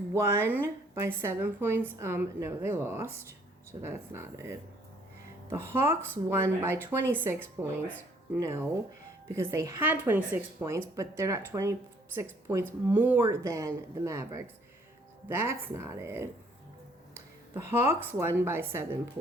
by 7 points. No, they lost. So that's not it. The Hawks won by 26 points. No, because they had 26 points, but they're not 26 points more than the Mavericks. That's not it. The Hawks won by 7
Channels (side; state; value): both; normal; correlation 0.62